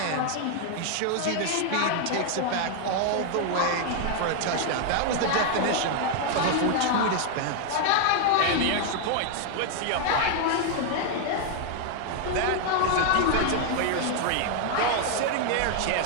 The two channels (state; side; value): different; both; correlation 0.00